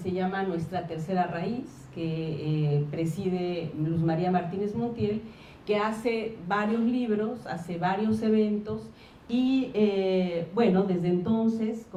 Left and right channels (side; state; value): both; identical; correlation 1.00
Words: llama Nuestra Tercera Raíz, que preside Luz María Martínez Montiel, que hace varios libros, hace varios eventos, y bueno, desde entonces,